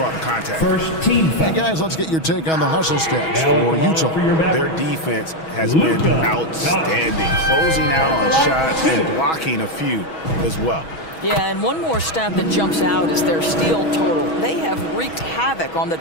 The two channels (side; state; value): right; late; 6.2 ms